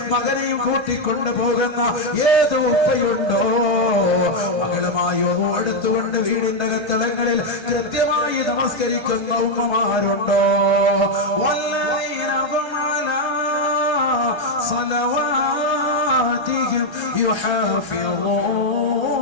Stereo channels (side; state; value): left; late; 1.3 ms